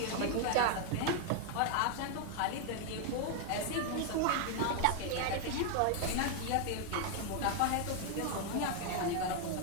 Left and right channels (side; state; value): both; different; correlation 0.00